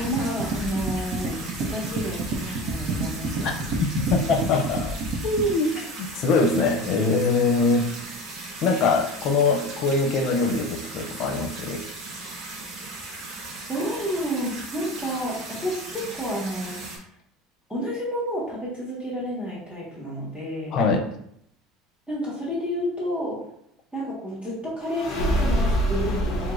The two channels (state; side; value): normal; both; correlation 0.35